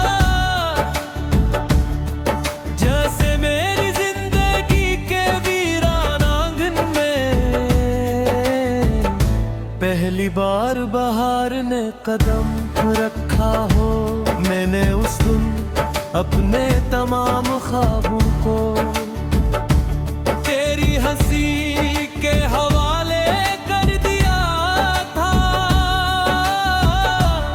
जैसे मेरी जिंदगी के वीरान आंगन में पहली बार बहार ने कदम रखा हो। मैंने उस दिन अपने तमाम ख्वाबों को तेरी हंसी के हवाले कर दिया था।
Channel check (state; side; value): identical; both; correlation 1.00